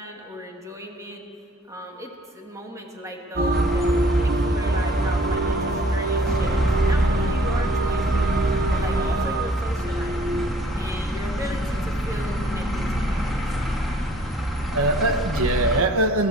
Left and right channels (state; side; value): normal; both; correlation 0.55